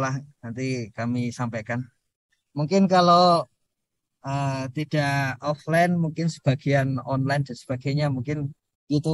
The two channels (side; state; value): both; identical; correlation 1.00